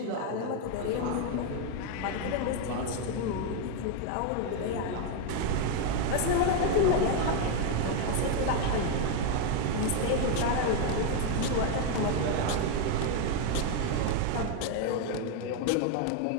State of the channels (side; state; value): both; different; correlation 0.01